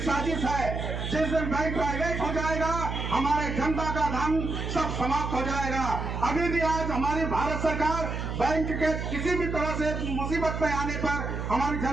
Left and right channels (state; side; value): noise; right; hum, 4 dB below the sound